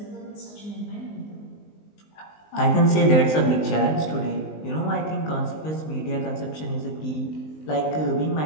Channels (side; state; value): right; late; 19 ms